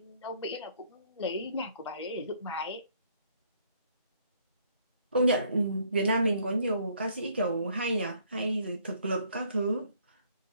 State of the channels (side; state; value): both; inverted; correlation -0.64